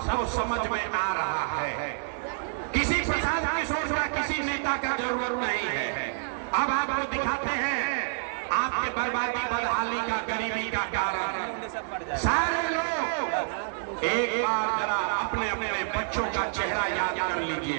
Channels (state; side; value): silent; left; 56 dB below the other